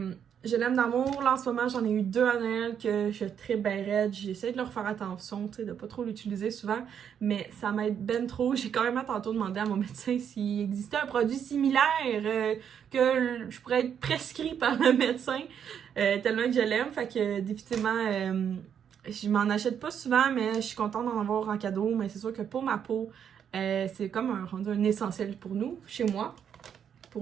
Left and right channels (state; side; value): quieter; left; 8.3 dB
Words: je l'aime d'amour. Là, en ce moment, j'en ai eu 2 à Noël que je tripe ben raide. J'essaie de leur faire attention, tu sais, de pas trop l'utiliser souvent, mais ça m'aide ben trop. J'ai quand même tantôt demandé à mon médecin s'il existait un produit similaire que je pourrais être prescrit par le médecin, tellement que je l'aime. Fait que définitivement, je m'en achète pas souvent, mais je suis contente d'en avoir en cadeau. Mais c'est sûr que pour ma peau, c'est comme un essentiel pour nous, chez moi.